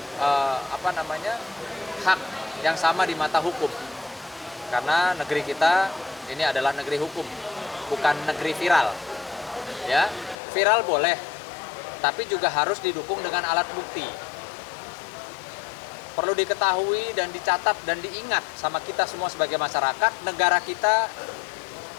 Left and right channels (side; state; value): right; drops out; at 10.4 s